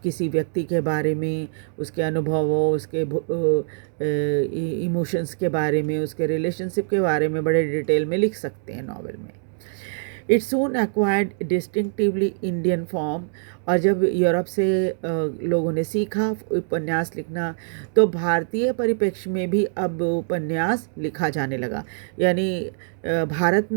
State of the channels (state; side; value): silent; left; digital silence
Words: व्यक्ति के बारे में, उसके अनुभवों, उसके इमोशंस के बारे में, उसके रिलेशनशिप के बारे में बड़े डिटेल में लिख सकते हैं नॉवेल में। It soon acquired distinctively Indian form. और जब यूरोप से लोगों ने सीखा उपन्यास लिखना, तो भारतीय परिप्रेक्ष्य में भी अब उपन्यास लिखा जाने लगा। यानी भारत